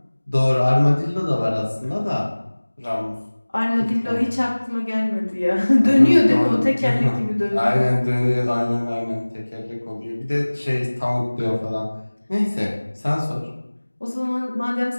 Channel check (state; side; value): inverted; both; correlation -1.00